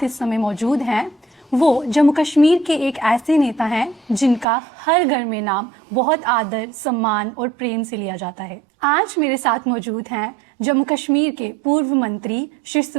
इस समय मौजूद हैं वो जम्मू कश्मीर के एक ऐसे नेता हैं जिनका हर घर में नाम बहुत आदर, सम्मान और प्रेम से लिया जाता है। आज मेरे साथ मौजूद हैं जम्मू कश्मीर के पूर्व मंत्री श्री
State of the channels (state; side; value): drops out; left; at 4.5 s